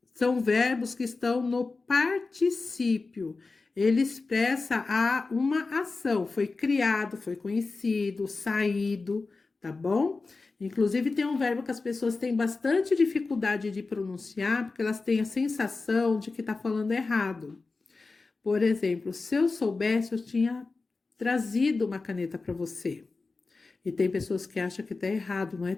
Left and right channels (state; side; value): quieter; right; 3.9 dB